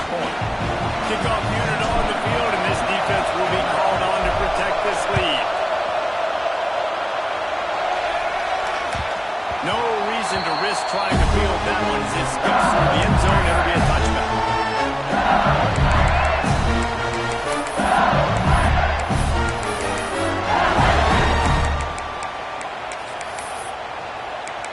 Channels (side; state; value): both; identical; correlation 1.00